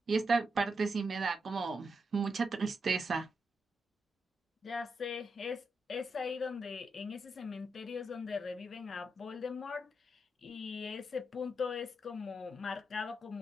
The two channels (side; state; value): both; normal; correlation 0.84